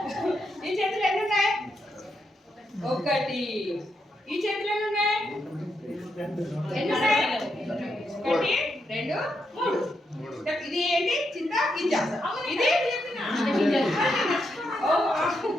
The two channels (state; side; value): normal; both; correlation 0.82